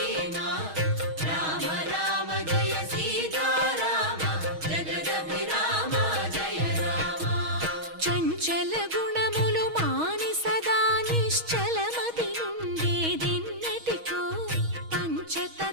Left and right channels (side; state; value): left; late; 6.3 ms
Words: రామ రామ జయ సీతారామ జగదభిరామ జయ రామ చంచల గుణములు మాని సదా నిశ్చలమతి నుండేదెన్నటికో